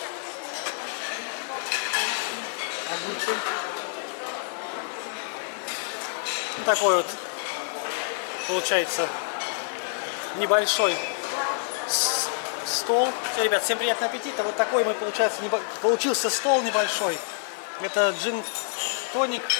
Ну, такой вот получается небольшой стол. Все, ребят, всем приятного аппетита. Вот такой мы, получился стол небольшой. Это джин-тоник,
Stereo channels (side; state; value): right; silent; 60 dB below the other